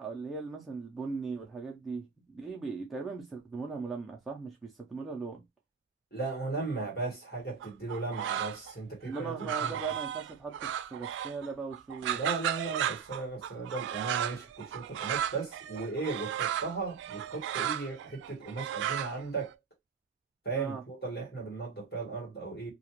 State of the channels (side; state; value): left; quieter; 5.7 dB